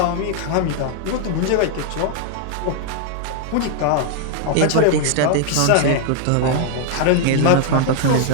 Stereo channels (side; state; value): both; different; correlation 0.00